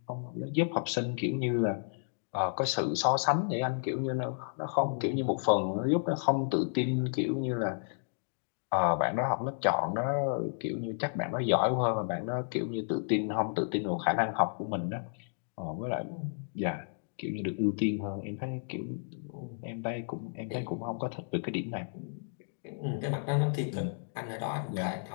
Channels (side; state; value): right; silent; digital silence